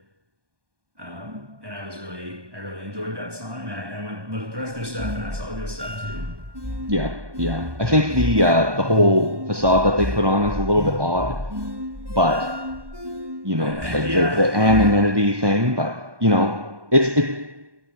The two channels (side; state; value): left; late; 1.2 ms